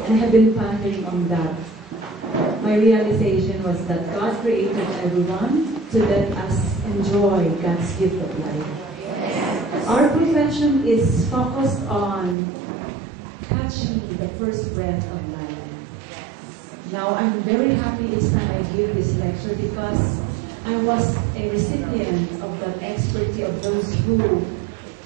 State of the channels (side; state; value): left; drops out; at 12.4 s